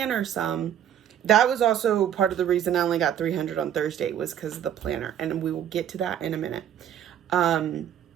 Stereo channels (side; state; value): left; quieter; 10.1 dB